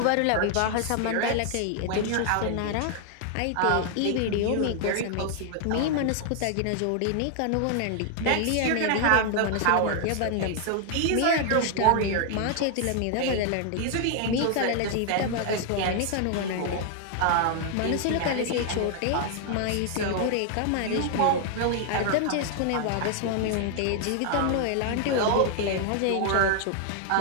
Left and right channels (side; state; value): both; different; correlation 0.00